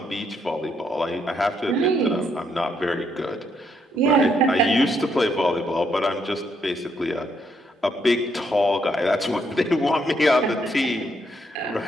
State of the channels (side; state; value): both; normal; correlation 0.74